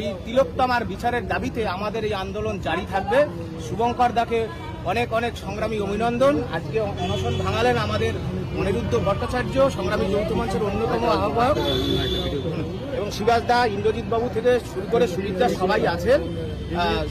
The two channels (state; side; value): identical; both; correlation 1.00